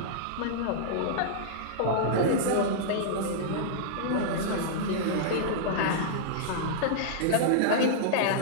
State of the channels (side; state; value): both; different; correlation -0.02